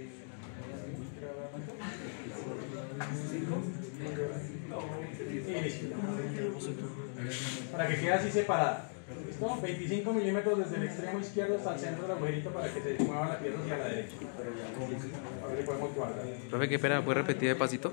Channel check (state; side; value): silent; right; digital silence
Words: Y listo. Para que quede así separada. ¿Listo? 25 milímetros desde el extremo izquierdo hasta el centro del agujerito para que se mueva la pieza hacia la derecha. Ahora le podemos guardar. Profe, qué pena, ¿puede repetir de pasito?